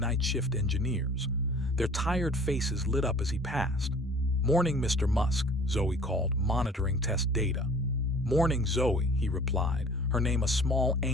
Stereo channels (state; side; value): normal; both; correlation 0.49